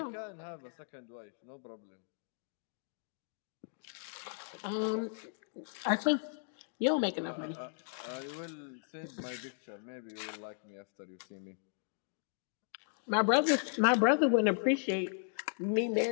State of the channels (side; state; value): right; silent; digital silence